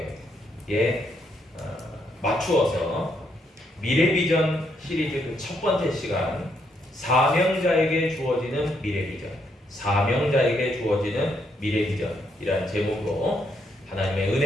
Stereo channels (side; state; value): both; normal; correlation 0.75